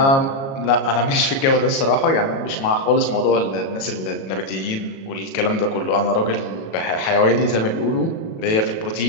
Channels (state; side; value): late; right; 37 ms